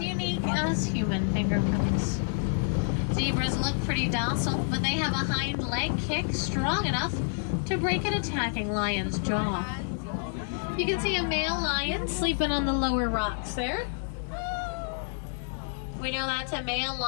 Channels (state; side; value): silent; right; 59 dB below the other